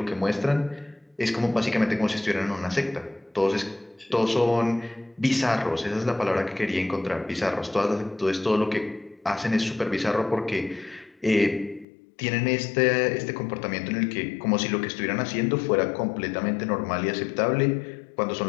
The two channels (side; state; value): right; drops out; at 11.9 s